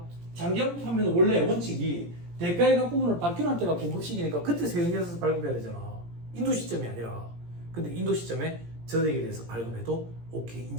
장기할부 판매는 원래 원칙이 대가의 각 부분을 받기로 한 때가 공급시기니까 그때 세금계산서 발급해야 되잖아. 인도 시점이 아니라. 근데 인도 시점에 전액에 대해서 발급해도 오케이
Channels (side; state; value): left; late; 17 ms